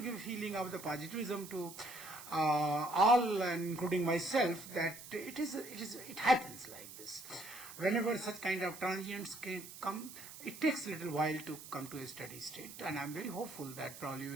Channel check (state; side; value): noise; right; hiss, 14 dB below the sound